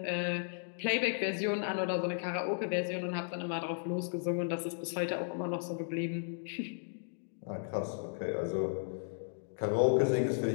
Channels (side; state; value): right; silent; digital silence